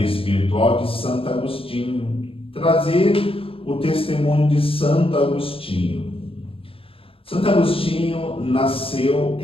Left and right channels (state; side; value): late; right; 0.27 ms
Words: espiritual de Santo Agostinho. Trazer o testemunho de Santo Agostinho. Santo Agostinho nasceu